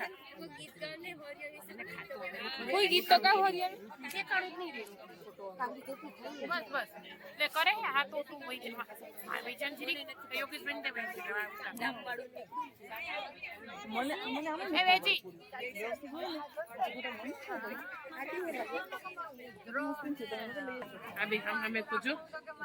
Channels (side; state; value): both; identical; correlation 1.00